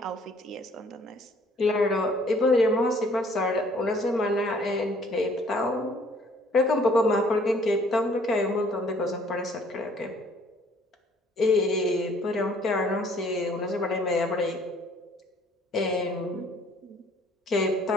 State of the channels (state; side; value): normal; both; correlation 0.59